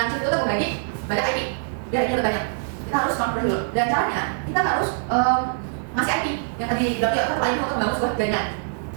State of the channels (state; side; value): silent; left; digital silence